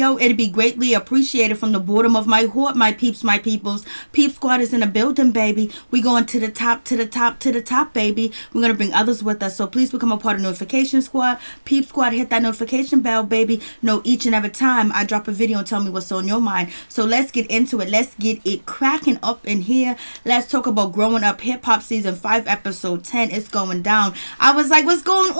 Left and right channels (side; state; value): both; inverted; correlation -1.00